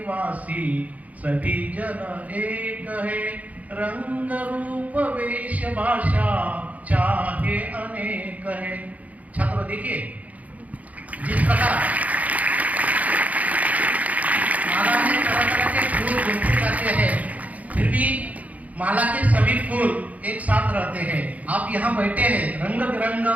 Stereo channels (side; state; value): left; late; 0.072 ms